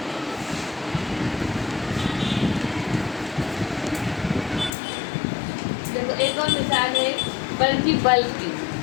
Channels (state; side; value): drops out; right; at 4.7 s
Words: देखो एक और मिसाल है बल्कि बल्ब की।